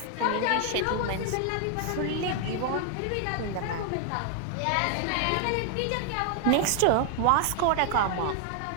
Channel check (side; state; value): both; different; correlation 0.00